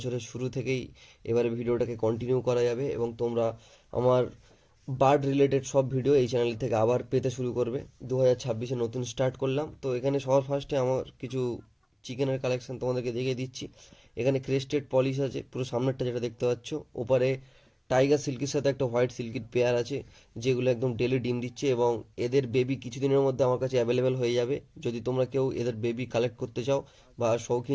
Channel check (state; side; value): identical; both; correlation 1.00